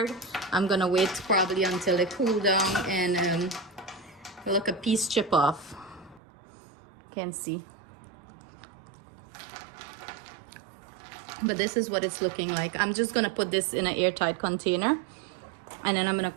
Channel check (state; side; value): drops out; left; at 6.2 s